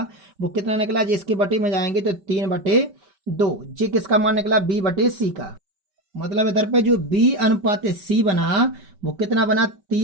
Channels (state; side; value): late; left; 5.2 ms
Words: वो कितना निकला, जिसके बटे में जाएंगे तो 3/2। जी किसका मान निकला, B/C का। मतलब इधर पे जो B अनुपात C बना वो कितना बना,